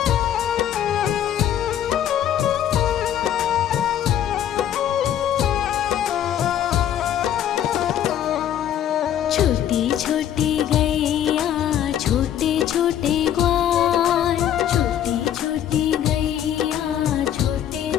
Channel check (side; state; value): right; quieter; 10.5 dB